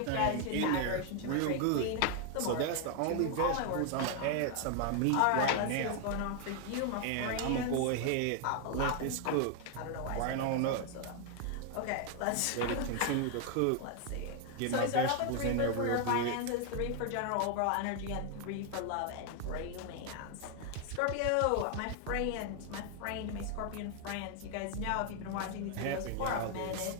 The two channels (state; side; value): different; both; correlation 0.00